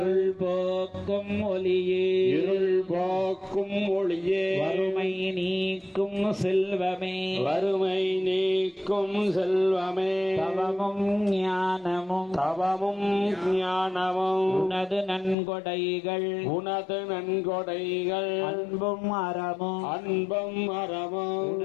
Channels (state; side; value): drops out; right; at 15.4 s